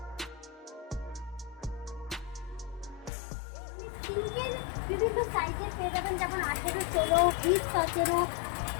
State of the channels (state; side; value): drops out; right; at 3.1 s